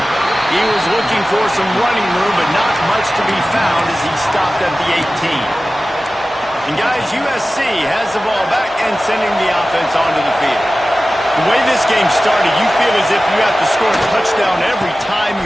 He was looking for some running room, but not much to be found as he stopped at the 18. And guys, USC has the ball back and sending the offense onto the field. The way this game started, you feel as if you have to score a touchdown every time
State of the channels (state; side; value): normal; both; correlation 0.96